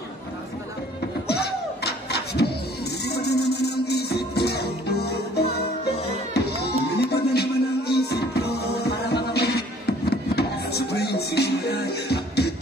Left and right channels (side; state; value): both; normal; correlation 0.56